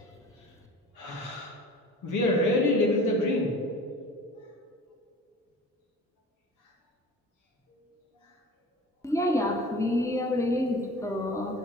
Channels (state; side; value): normal; both; correlation 0.40